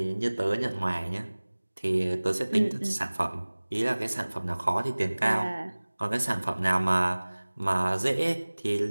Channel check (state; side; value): inverted; both; correlation -1.00